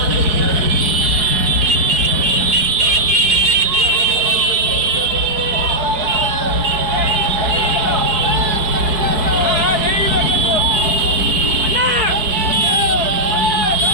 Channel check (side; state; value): left; late; 4.6 ms